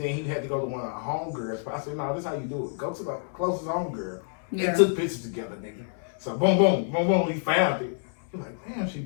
he had to go to one of our homegirls. But I said, no, this is how you do it. Go to the closest homegirl. Yeah. And took pictures together, nigga. So boom, boom, boom, boom, we found it. He like, damn, she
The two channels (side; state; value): right; silent; digital silence